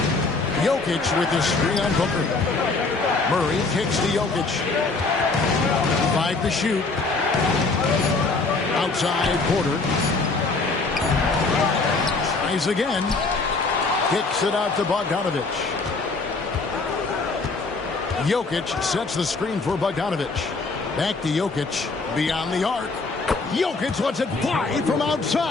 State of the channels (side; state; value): right; quieter; 3.8 dB